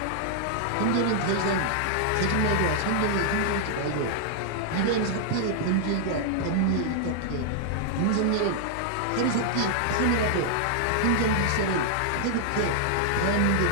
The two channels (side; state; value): both; different; correlation -0.01